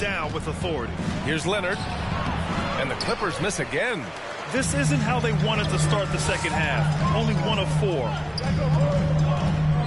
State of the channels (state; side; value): identical; both; correlation 1.00